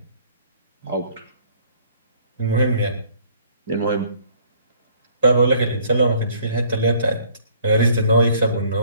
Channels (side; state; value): both; inverted; correlation -0.59